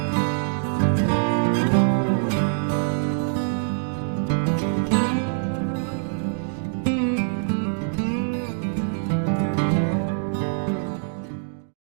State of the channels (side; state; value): left; silent; digital silence